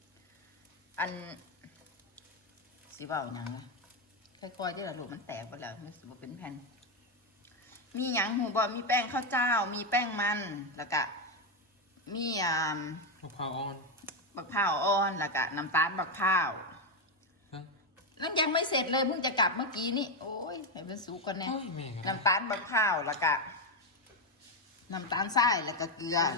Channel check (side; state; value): both; normal; correlation 0.06